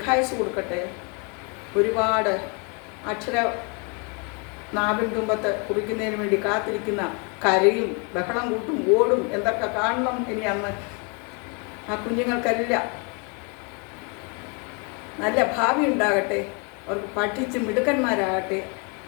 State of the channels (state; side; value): quieter; right; 34.3 dB